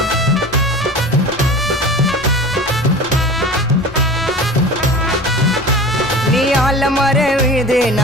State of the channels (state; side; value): noise; left; rumble, 20 dB below the sound